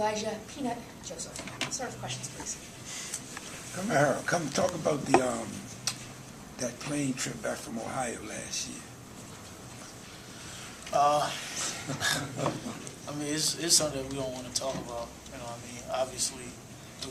Peanut Joseph. Start with questions, please. Kamara, come talk about the that plane trip back from Ohio last year. I mean, it's something that we don't want to talk about. You know, I mean, obviously, it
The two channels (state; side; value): identical; both; correlation 1.00